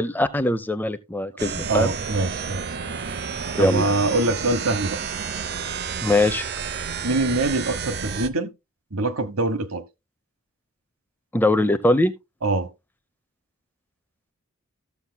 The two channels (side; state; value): both; normal; correlation 0.39